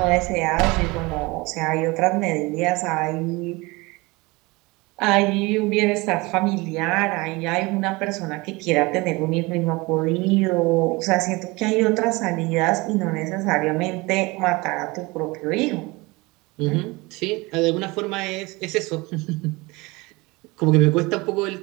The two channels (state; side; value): quieter; left; 23.9 dB